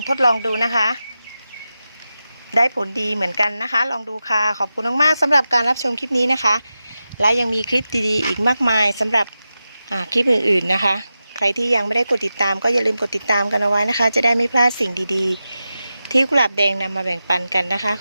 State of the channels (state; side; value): inverted; both; correlation -0.92